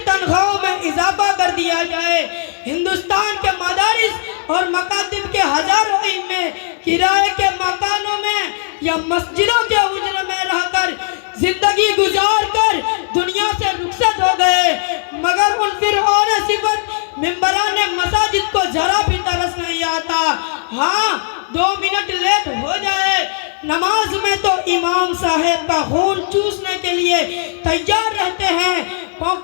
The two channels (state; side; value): silent; right; digital silence